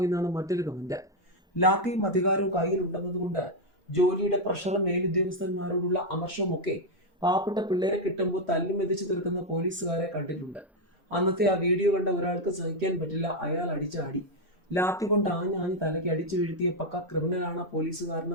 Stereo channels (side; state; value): both; normal; correlation 0.03